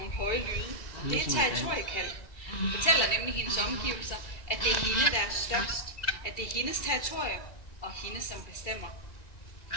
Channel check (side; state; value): right; late; 1.9 ms